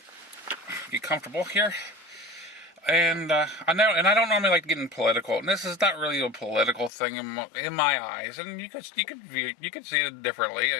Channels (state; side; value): drops out; right; at 6.9 s